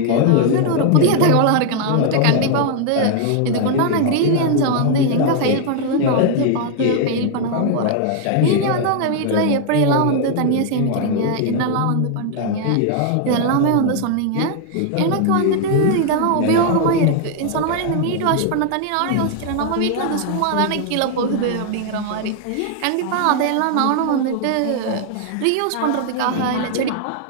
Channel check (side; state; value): both; different; correlation 0.00